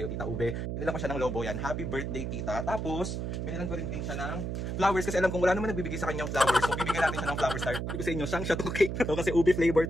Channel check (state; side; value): noise; right; hum, 3 dB below the sound